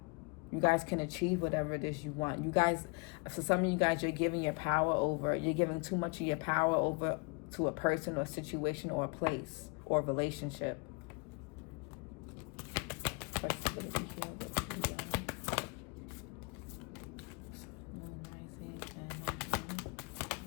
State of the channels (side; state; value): right; quieter; 31.4 dB